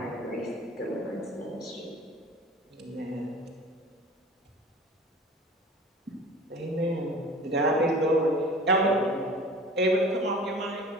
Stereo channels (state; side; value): normal; both; correlation 0.42